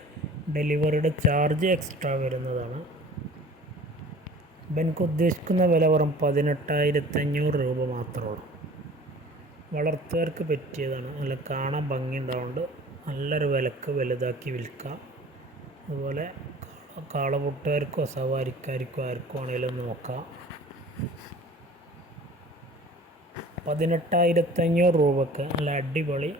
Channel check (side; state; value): both; normal; correlation 0.45